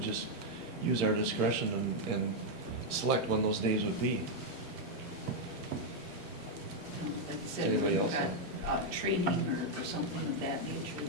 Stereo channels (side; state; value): both; normal; correlation 0.00